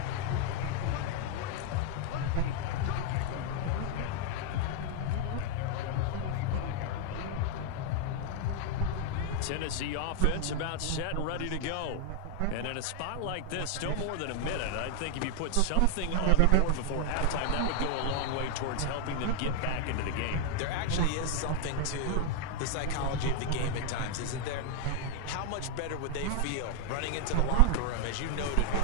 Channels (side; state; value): both; different; correlation 0.00